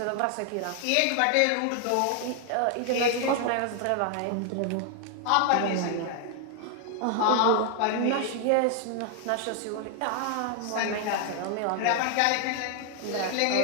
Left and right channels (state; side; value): different; both; correlation 0.00